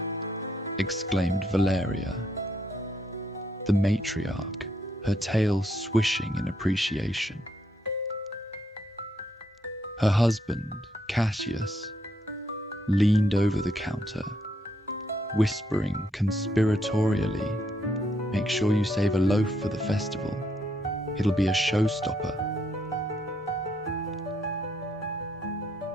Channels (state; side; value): normal; both; correlation 0.74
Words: exclaimed Valeria, the matriarch, her tail swishing in appreciation. Her husband, Cassius, leaned over the counter, whispering conspiratorially, "Make sure you save a loaf for the festival. It'll be a showstopper."